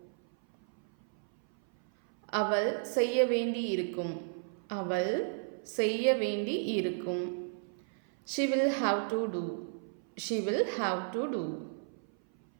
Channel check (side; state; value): left; silent; 56 dB below the other